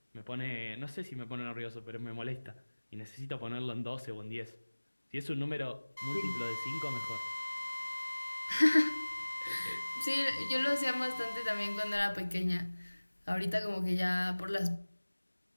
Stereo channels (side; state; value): both; inverted; correlation -1.00